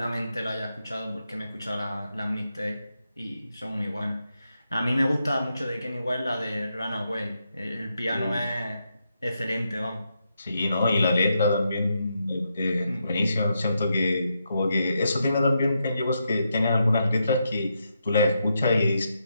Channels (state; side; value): inverted; both; correlation -0.83